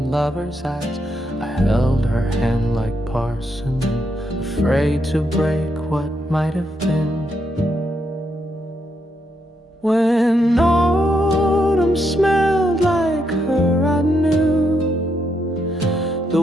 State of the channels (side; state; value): both; normal; correlation 0.79